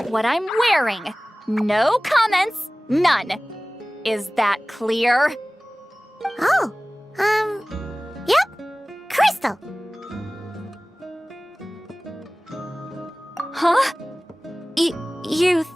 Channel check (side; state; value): both; normal; correlation 0.98